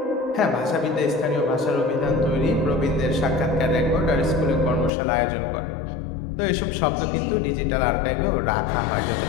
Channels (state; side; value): drops out; right; at 4.9 s